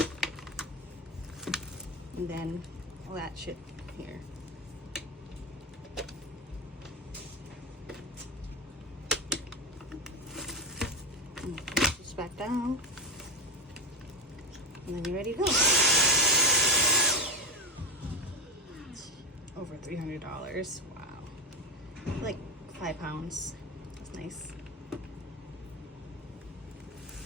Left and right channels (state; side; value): normal; both; correlation 0.13